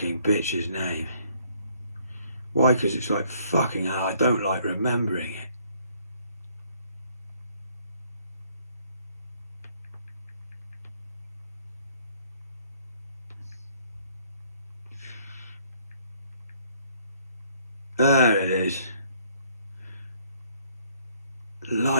bitch's name. Why? Because it's like, fucking hell, I don't like remembering it. There it is.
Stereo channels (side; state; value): both; inverted; correlation -0.64